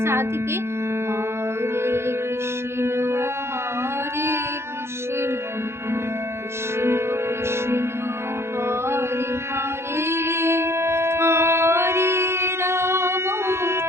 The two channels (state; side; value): late; left; 0.12 ms